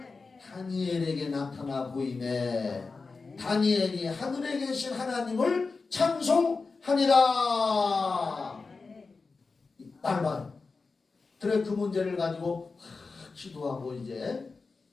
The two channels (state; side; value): quieter; right; 4.2 dB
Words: 다니엘에게 나타나 보이매 다니엘이 하늘에 계신 하나님을 찬송하니라. 날 봐요. 그래 그 문제를 가지고 기도하고 이제